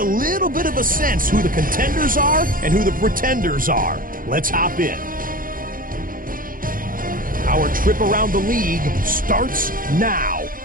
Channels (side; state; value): left; late; 0.40 ms